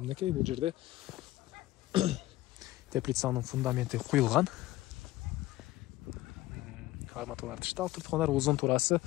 бул жерде теплицанын фундаменти куюлган. Арматуралар тышталып туруп туугандар. Узун туурасы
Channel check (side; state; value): right; quieter; 16.9 dB